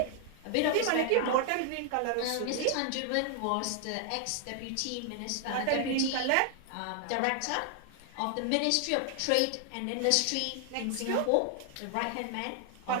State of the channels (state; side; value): different; both; correlation 0.00